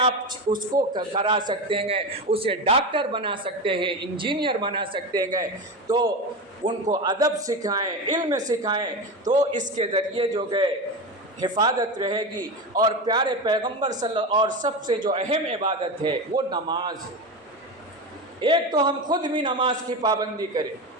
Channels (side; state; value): both; normal; correlation 0.21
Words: اس کو کرا سکتے ہیں، اسے ڈاکٹر بنا سکتے ہیں، انجینئر بنا سکتے ہیں، تو ان کو ادب سکھائیں، علم سکھائیں، تو اس کے ذریعے جو ہے حفاظت رہے گی۔ اور پیارے پیغمبر اور سب سے جو اہم عبادت ہے وہ نماز ہے۔ ایک تو ہم خود بھی نماز کی پابندی کریں،